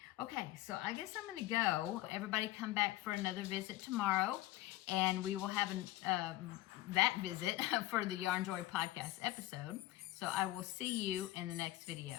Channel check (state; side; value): quieter; right; 16.7 dB